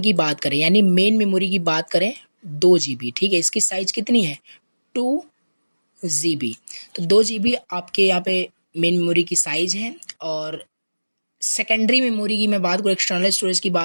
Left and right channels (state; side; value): inverted; both; correlation -1.00